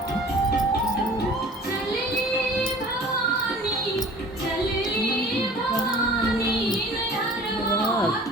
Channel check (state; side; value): normal; both; correlation 0.46